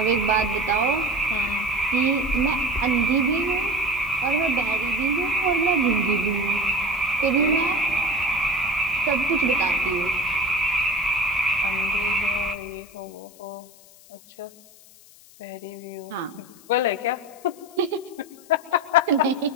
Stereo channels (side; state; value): left; noise; hiss, 24 dB below the sound